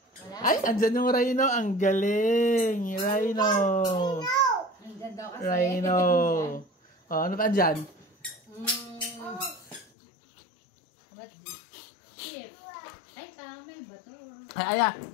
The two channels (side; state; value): right; drops out; at 9.9 s